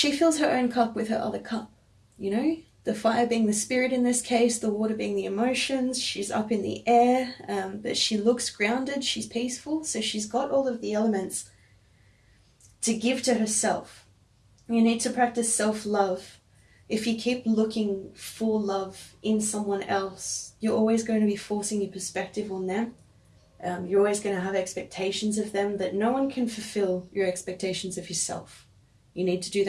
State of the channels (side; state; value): both; identical; correlation 1.00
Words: fills her own cup with her other cup, you know, the fire being the spirit in this case, the water being the emotions. She's up in the air, but she looks grounded, she's peaceful, so she's got all of the elements to give to herself. You need to practice self-love. If you keep looking for love in someone else, you're always going to be forcing your perspective on them. You're always going to have expectations of them that no one can fulfill your expectations of yourself. You need to do